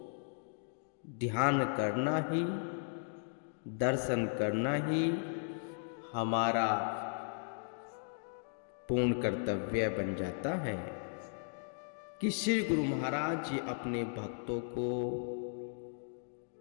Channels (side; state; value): right; silent; digital silence